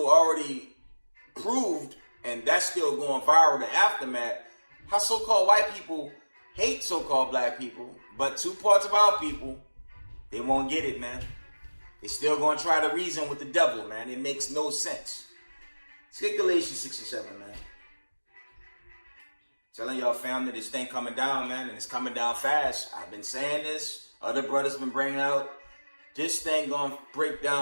already proved, and that's still going viral, the aftermath, how so-called white people hate so-called black people, but two parts of our people, they won't get it, man. They still gonna try to reason with the devil, man. It makes no sense. Let's get Galatians 6 and 7, man. Telling y'all, family, this thing coming down, man, and it's coming down fast. I've been saying this. Other brothers been bringing out. This thing gonna break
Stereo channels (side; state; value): both; inverted; correlation -1.00